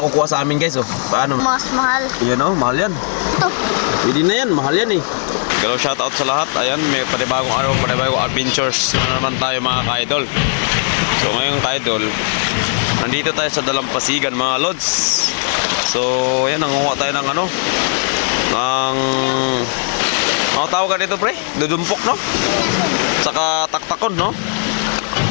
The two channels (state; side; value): silent; right; 68 dB below the other